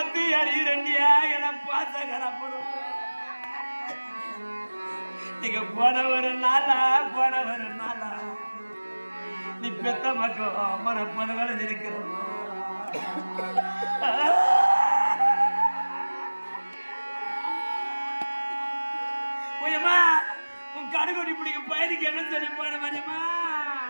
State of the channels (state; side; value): inverted; both; correlation -1.00